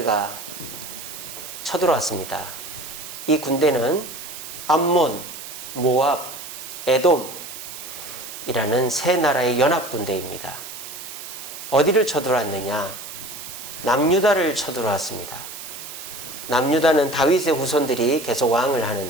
쳐들어왔습니다. 이 군대는 암몬, 모압, 에돔이라는 세 나라의 연합군대입니다. 어디를 쳐들어왔느냐? 남유다를 쳐들어왔습니다. 남유다는 다윗의 후손들이 계속 왕을 하는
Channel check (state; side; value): noise; right; hiss, 11 dB below the sound